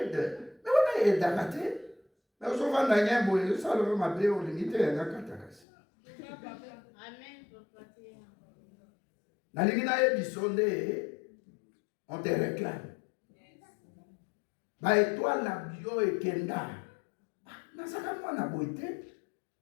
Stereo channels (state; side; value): drops out; right; at 5.6 s